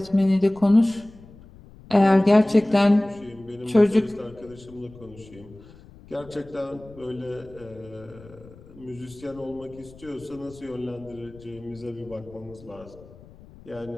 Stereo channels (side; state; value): left; noise; rumble, 21 dB below the sound